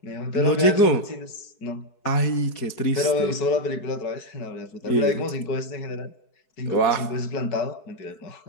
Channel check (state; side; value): late; right; 4.7 ms